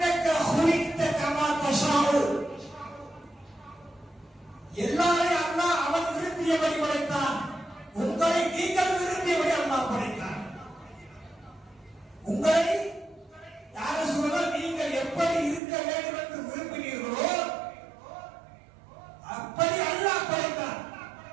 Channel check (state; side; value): drops out; left; at 15.6 s